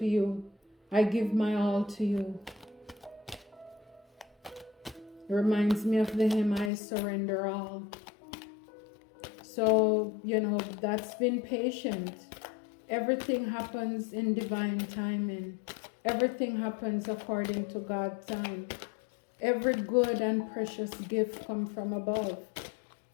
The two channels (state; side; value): drops out; right; at 6.7 s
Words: you. I give my all to you. It reminds me of the hymn, I surrender all. So, that's been patient. Everything happens in divine timing. Everything happens according to God's time. Every good and precious gift comes from above.